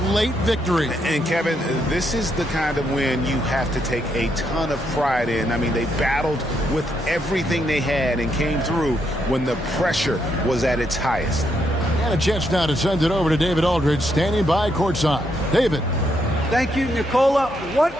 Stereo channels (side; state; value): both; normal; correlation 0.77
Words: late victory. And Kevin, this is the kind of win you have to take a ton of pride in. I mean, they battled with everything they had and came through when the pressure was at its highest. And a chance now to send it over to David Aldridge, standing by courtside. David. Thank you, Nicola. What